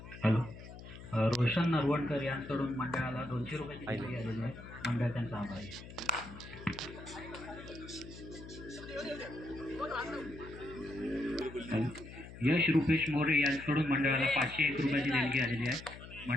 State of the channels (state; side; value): noise; left; hum, 14 dB below the sound